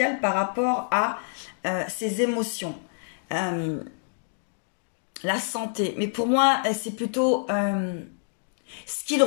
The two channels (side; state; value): right; silent; digital silence